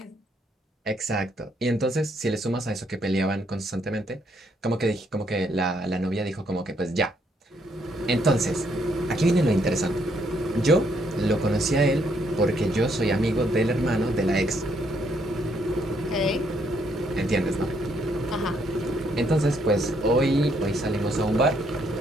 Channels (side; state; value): both; normal; correlation 0.72